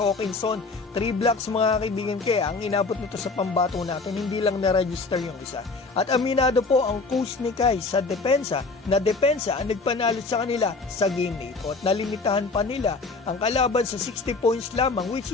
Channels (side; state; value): right; quieter; 3.9 dB